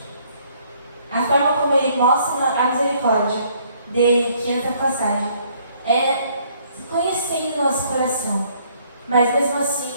A forma como Ele mostra a misericórdia dele, aqui nessa passagem, é conhecendo nosso coração, mas mesmo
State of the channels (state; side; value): inverted; both; correlation -0.64